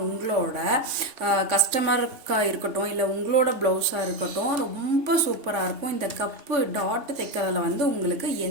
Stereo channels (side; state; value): left; late; 3.5 ms